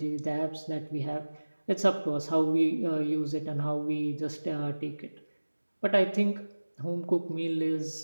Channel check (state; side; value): inverted; both; correlation -1.00